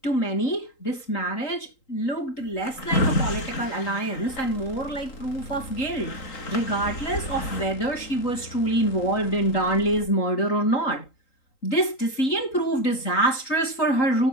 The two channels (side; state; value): right; late; 3.8 ms